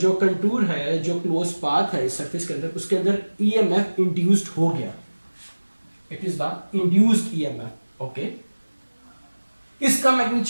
कंटूर है, जो क्लोज पाथ है इस सरफेस के अंदर, उसके अंदर ईएमएफ इंड्यूस्ड हो गया, it is the induced EMF. Okay, इसका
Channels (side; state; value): both; inverted; correlation -1.00